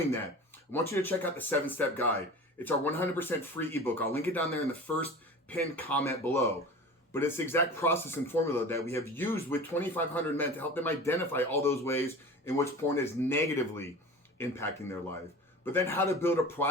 that, I want you to check out the 7-Step Guide. It's our 100% free ebook. I'll link it down there in the first pinned comment below. But it's the exact process and formula that we have used with 2,500 men to help them identify all those ways in which porn is negatively impacting their life. But then how to build a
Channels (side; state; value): both; normal; correlation 0.36